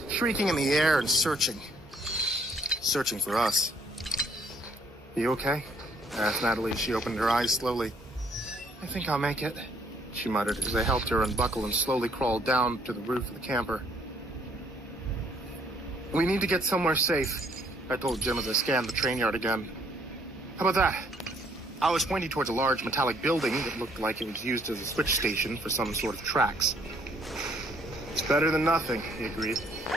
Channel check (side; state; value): both; normal; correlation 0.65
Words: shrieking in the air and searching. Searching for us. "Are you okay?" I asked Natalie as she opened her eyes slowly. "I think I'll make it," she muttered as I helped her unbuckle and slowly crawled down to the roof of the camper. "We need to get somewhere safe," I told Jim as I scanned the train yard again. "How about that?" I was pointing towards a large metallic building that looked like it was used as a switch station for some sort of tracks. "It's better than nothing," he agreed,